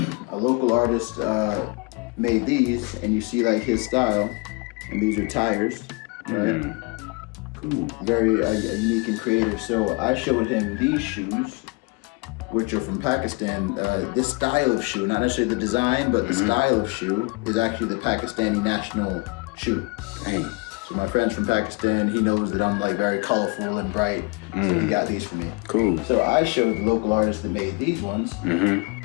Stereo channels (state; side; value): quieter; right; 28.0 dB